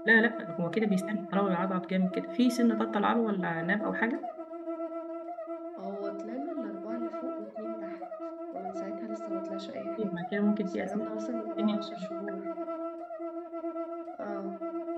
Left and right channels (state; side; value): identical; both; correlation 1.00